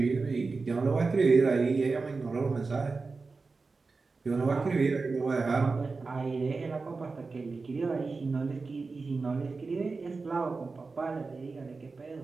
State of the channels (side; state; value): left; quieter; 4.1 dB